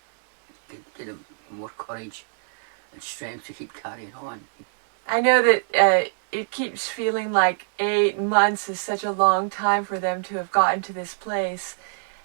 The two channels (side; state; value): left; silent; digital silence